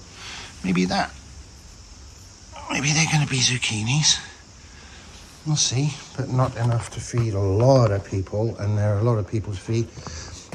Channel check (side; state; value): both; identical; correlation 1.00